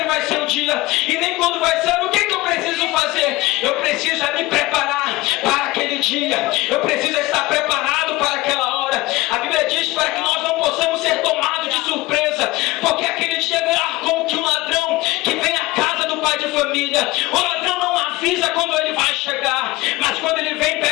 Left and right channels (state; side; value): quieter; right; 20.1 dB